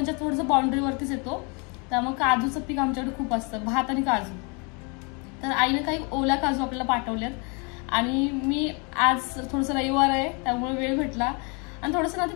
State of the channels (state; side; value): quieter; right; 32.8 dB